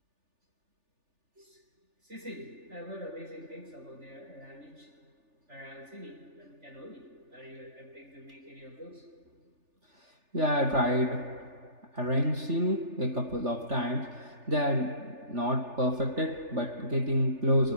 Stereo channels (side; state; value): left; late; 3.4 ms